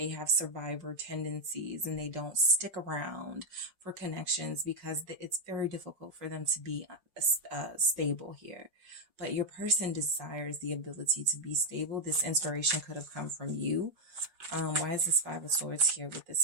have survivor tendencies and they don't stick around for connections because it's very difficult for them to be stable here. But your person desires the ability to be stable. This inspiration could have come from you. Why is this 5 of Swords here with this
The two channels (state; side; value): late; left; 5.5 ms